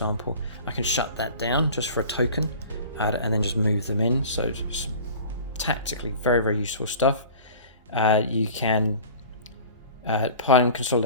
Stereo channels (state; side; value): inverted; both; correlation -0.42